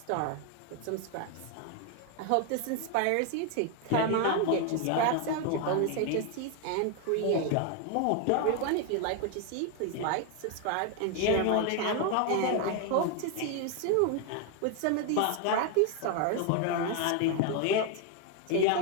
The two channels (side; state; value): both; different; correlation 0.01